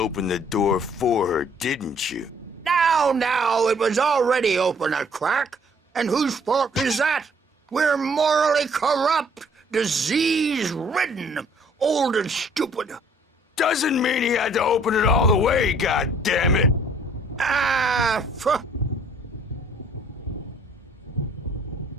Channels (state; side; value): normal; both; correlation 0.59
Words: the door for her, didn't you? Now, it was already open a crack. And whose fault is that? We're morally corrupt, disease-ridden, old and stupid. Doesn't mean he had to open it all the way, goddammit. So